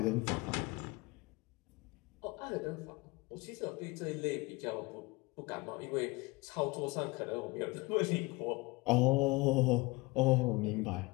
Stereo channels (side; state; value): right; quieter; 24.2 dB